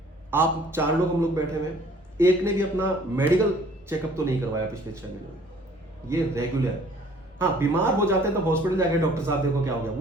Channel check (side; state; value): both; normal; correlation 0.55